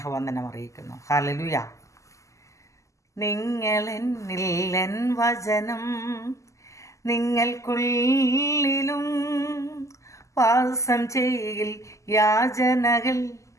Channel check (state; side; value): late; right; 0.15 ms